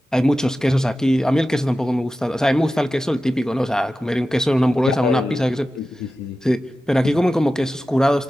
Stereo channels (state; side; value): normal; both; correlation 0.94